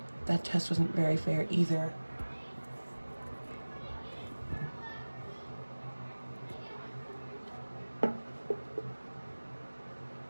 that test wasn't very fair either.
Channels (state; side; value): inverted; both; correlation -1.00